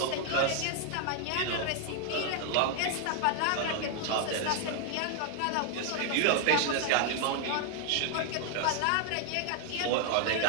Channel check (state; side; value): different; both; correlation 0.00